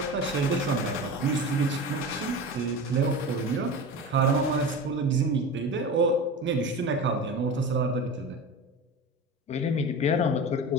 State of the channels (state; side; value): normal; both; correlation 0.30